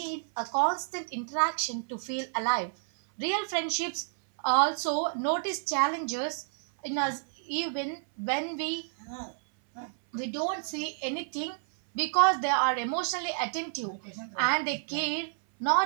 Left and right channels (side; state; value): left; silent; 58 dB below the other